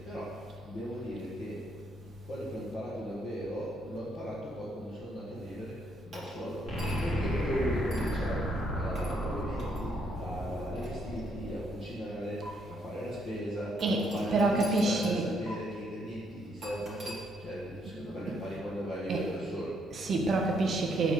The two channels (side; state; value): both; normal; correlation 0.72